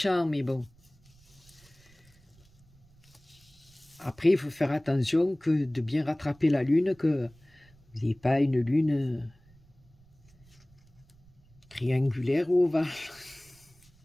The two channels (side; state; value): right; noise; rumble, 29 dB below the sound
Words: mais bon. Après, il faut faire attention que de bien rattraper la lune, que vous n'ayez pas une lune triangulaire ou ovale.